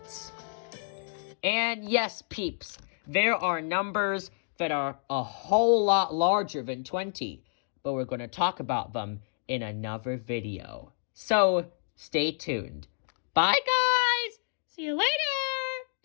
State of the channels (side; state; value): right; silent; digital silence